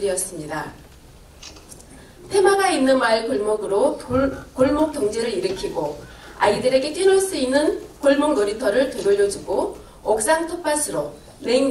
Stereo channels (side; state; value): both; identical; correlation 1.00